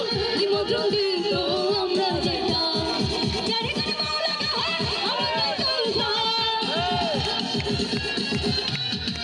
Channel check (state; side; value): identical; both; correlation 1.00